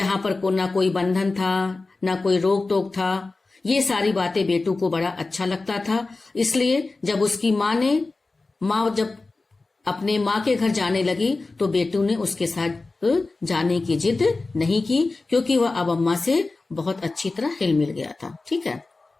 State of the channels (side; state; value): right; quieter; 3.5 dB